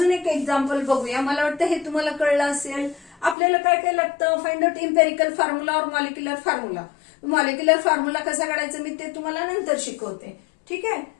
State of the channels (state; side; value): drops out; right; at 3.4 s